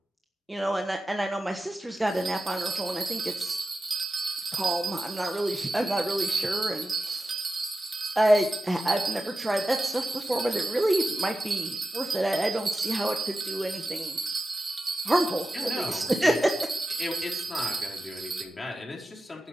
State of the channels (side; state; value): both; normal; correlation 0.92